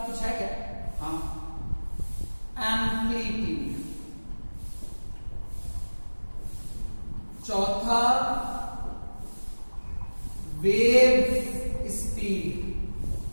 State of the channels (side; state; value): both; inverted; correlation -1.00